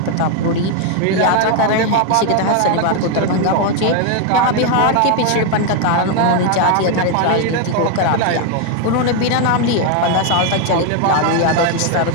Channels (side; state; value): both; different; correlation 0.01